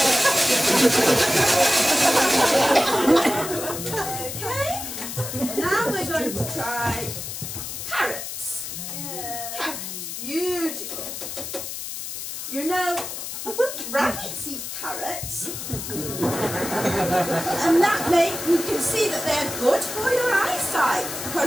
Okay, now we're going to try carrots. Carrots, beautiful. You know, rabbits eat carrots, and that you can see that they're good for your eyesight,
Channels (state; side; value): noise; left; hiss, 7 dB below the sound